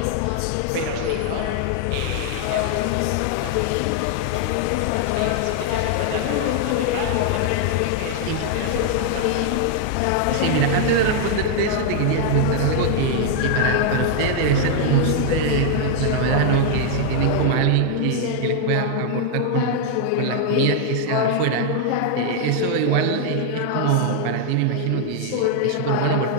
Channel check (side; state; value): both; different; correlation 0.00